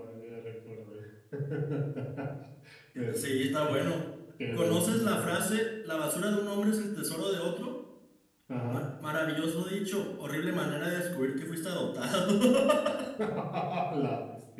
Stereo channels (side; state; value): both; identical; correlation 1.00